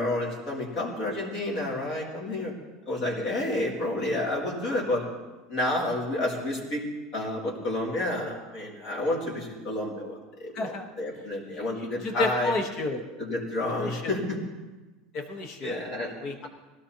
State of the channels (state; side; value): normal; both; correlation 0.46